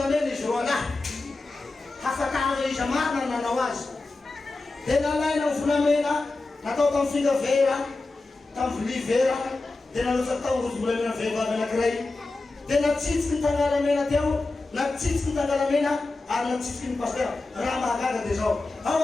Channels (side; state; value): right; quieter; 3.3 dB